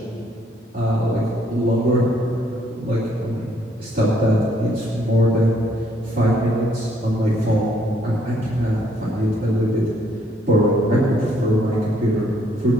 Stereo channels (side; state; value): both; normal; correlation 0.68